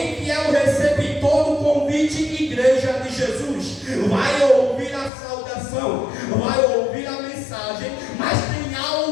que é o receptor do convite, igreja de Jesus, vai ouvir a saudação, vai ouvir a mensagem, mas tem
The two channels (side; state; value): right; drops out; at 5.1 s